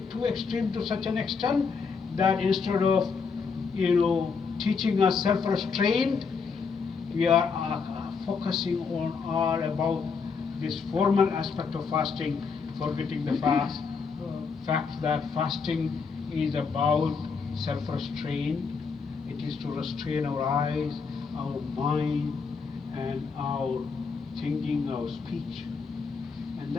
too extreme to such an extent that instead of teaching us self-restraint, we are focusing on all about this formal aspect of fasting, forgetting the fact that fasting is about self-restraint. It is to restrain our eyes, our mind, and our thinking, our speech. And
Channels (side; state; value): right; quieter; 5.3 dB